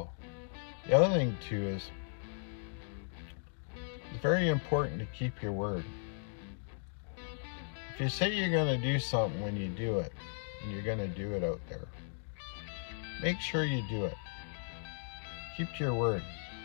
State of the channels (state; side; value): silent; right; digital silence